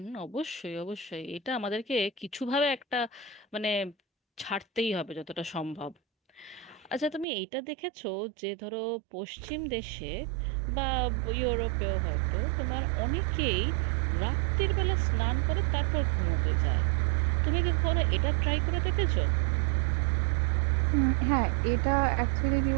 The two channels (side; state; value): left; drops out; at 7.2 s